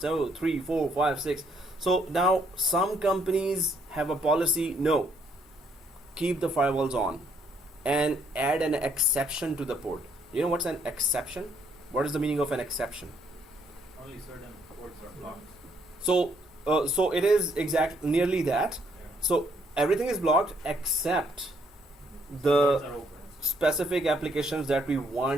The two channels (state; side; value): normal; both; correlation 0.70